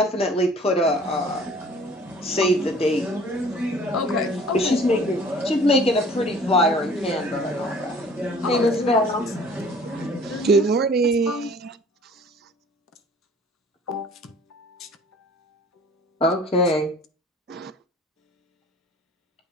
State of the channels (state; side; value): normal; both; correlation 0.50